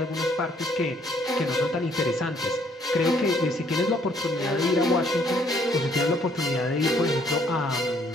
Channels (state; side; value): normal; both; correlation 0.65